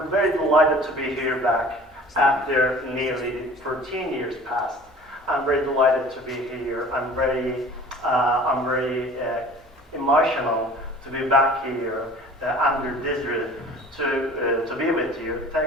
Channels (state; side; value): normal; both; correlation 0.45